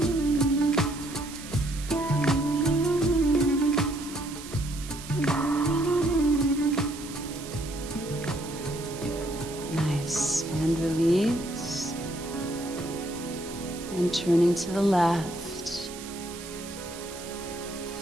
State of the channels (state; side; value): noise; right; hiss, 13 dB below the sound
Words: Nice. And release. And turning to the left.